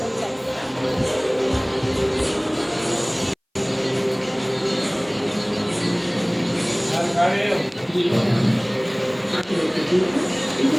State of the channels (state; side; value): identical; both; correlation 1.00